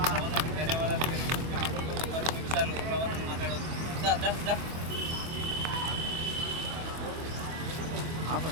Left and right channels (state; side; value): late; left; 24 ms